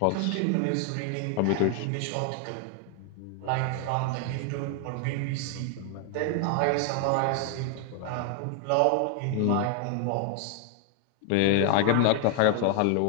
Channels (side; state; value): both; different; correlation 0.00